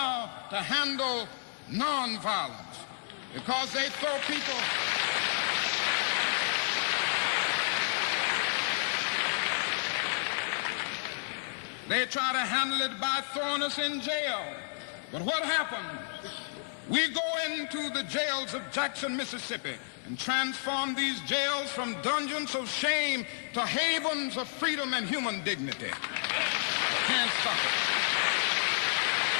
to handle nonviolence because they throw people. They try to handle it by throwing us in jail. But what happens? We go into the jails of Jackson, Mississippi, and transform these jails from dungeons of shame to havens of freedom and human dignity. Can't stop it.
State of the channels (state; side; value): silent; right; digital silence